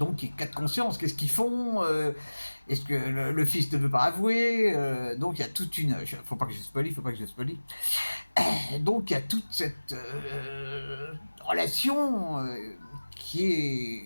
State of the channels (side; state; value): both; inverted; correlation -1.00